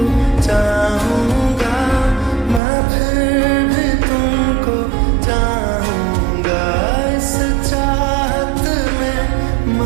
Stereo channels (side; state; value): left; drops out; at 2.6 s